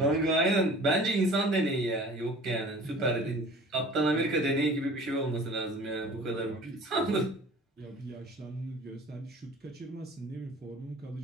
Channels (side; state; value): both; normal; correlation 0.45